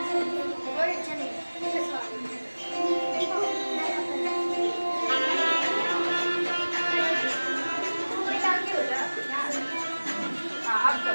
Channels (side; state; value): both; inverted; correlation -1.00